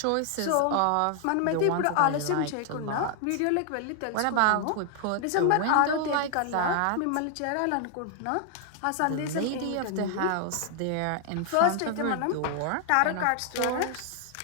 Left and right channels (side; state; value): both; different; correlation 0.00